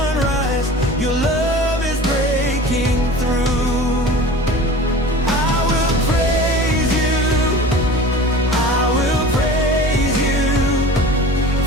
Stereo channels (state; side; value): normal; both; correlation 0.39